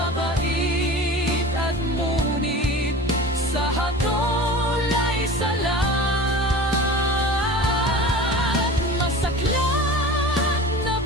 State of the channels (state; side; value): normal; both; correlation 0.36